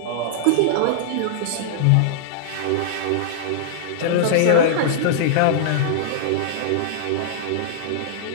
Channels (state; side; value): different; both; correlation -0.02